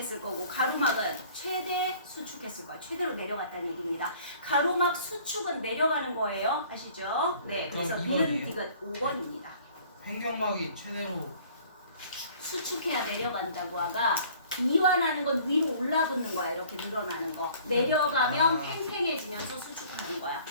거고 가로막은 최대 수축했을 거예요. 최대로 내려갔다는 얘기입니다. 가로막 수축은 내려가는 거예요. 아시죠? 네, 그럼 그래서 이번이에요? 니은 디귿 5번입니다. 횡격막이 최대로 수축해야 내려간다고 하가 이완하는 건 위로 올라붙는 거야. 이렇게 늘어나는 거. 내려가면 아. 팽팽해지면서 수축하는 거야.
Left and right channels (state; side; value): inverted; both; correlation -0.53